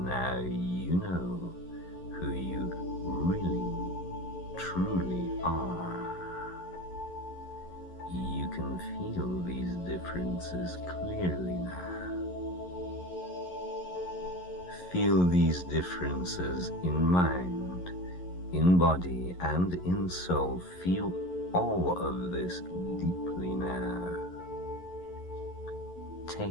You know who you really, truly are. You can feel these differences clearly now. Feel these differences in mind, in body, and in soul. Feel all of this deeply now.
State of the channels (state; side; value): late; right; 11 ms